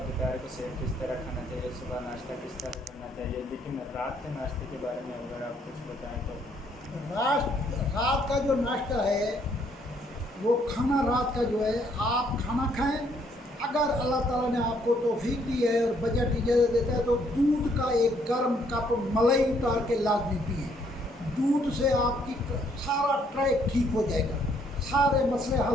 दोपहर को सेब किस तरह खाना चाहिए, सुबह नाश्ता किस तरह करना चाहिए, लेकिन रात के नाश्ते के बारे में अगर आप कुछ बताएं तो। रात का जो नाश्ता है वो खाना रात का जो है आप खाना खाएं। अगर अल्लाह ताला ने आपको तौफीक दी है और बजट इजाज़त देता है तो दूध का एक गर्म कप मलाई उतार के लाजमी पिए। दूध से आपकी सारा ट्रैक ठीक हो जाएगा, सारे मसले हल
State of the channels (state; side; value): normal; both; correlation 0.68